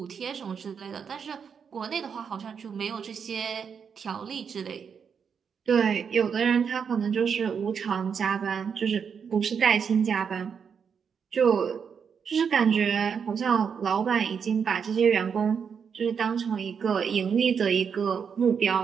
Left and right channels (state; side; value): quieter; left; 6.7 dB